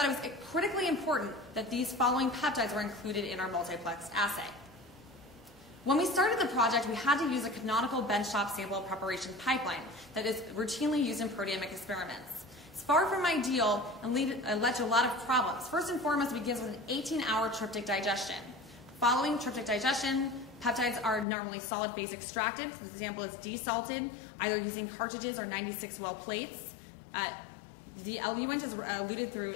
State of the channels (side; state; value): right; drops out; at 21.2 s